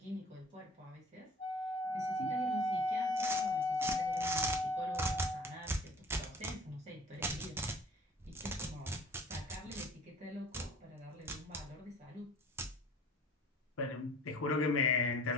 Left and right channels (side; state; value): both; normal; correlation 0.50